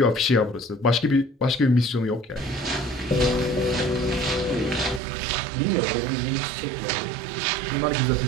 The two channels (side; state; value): left; drops out; at 5.0 s